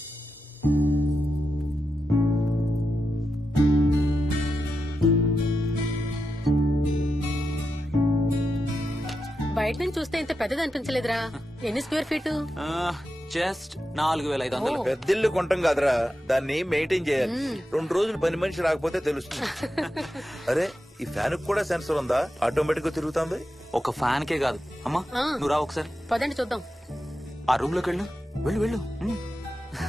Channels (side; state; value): both; normal; correlation 0.89